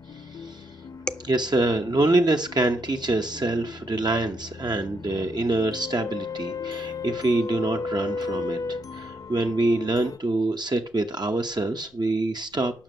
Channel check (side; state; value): left; noise; rumble, 30 dB below the sound